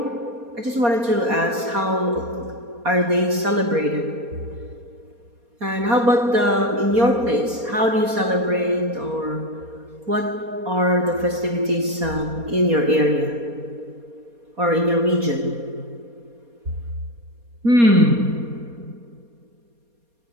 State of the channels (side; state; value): left; late; 4.2 ms